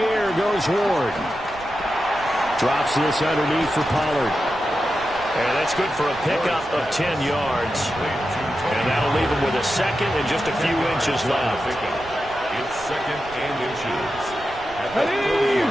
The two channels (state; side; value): noise; right; rumble, 18 dB below the sound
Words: air goes Ward. Drops this underneath for Pollard. And that's good for a pickup of 10 yards. And that'll leave him with a second and just a few inches left. It's 2nd and inches.